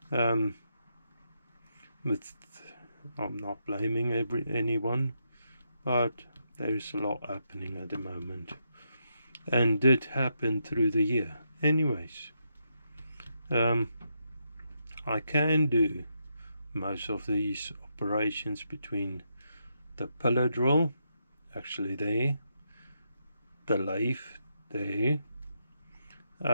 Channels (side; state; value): both; inverted; correlation -0.81